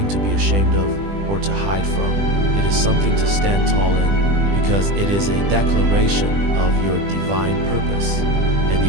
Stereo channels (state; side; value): late; left; 20 ms